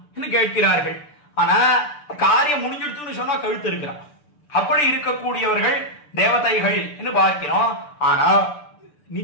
என்று கேட்கிறார்கள். ஆனா காரியம் முடிஞ்சிடுத்துன்னு சொன்னா கழுத்து இருக்கிறான். அப்படி இருக்கக்கூடியவர்கள் தேவதைகள் என்று பார்க்கிறோம். ஆனா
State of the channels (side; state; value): right; late; 6.8 ms